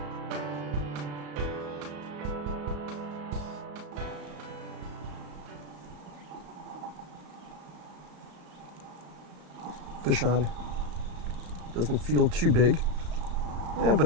Fish on. Doesn't feel too big. Yeah, but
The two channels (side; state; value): left; late; 34 ms